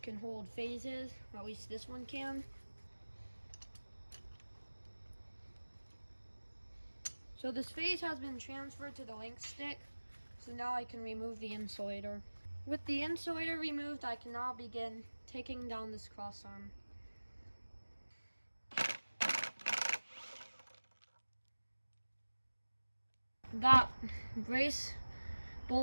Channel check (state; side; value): inverted; both; correlation -1.00